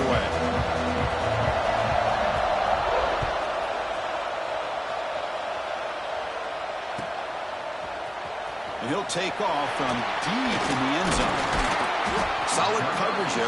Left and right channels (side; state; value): both; identical; correlation 1.00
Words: And he'll take off from deep in the end zone. Solid coverage there.